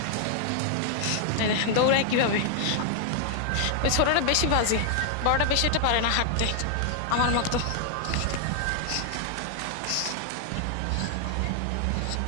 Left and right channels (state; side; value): different; both; correlation 0.00